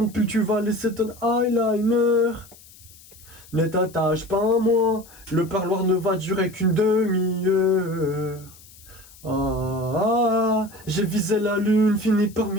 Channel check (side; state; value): left; noise; hiss, 23 dB below the sound